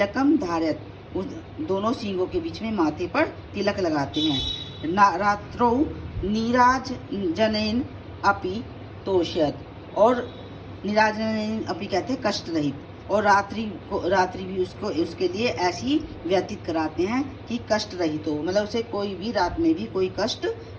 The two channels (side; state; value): both; identical; correlation 1.00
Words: धारयत, उस दोनों सींगों के बीच में माथे पर तिलक लगाते हैं। रात्रौ नीराजनेन अपि तोष्यत, और नीराजनेन अपि कहते हैं कष्ट रहित, और रात्रि भी उसके लिए ऐसी व्यतीत कराते हैं कि कष्ट रहित हो, मतलब उसे कोई भी रात में भी कोई कष्ट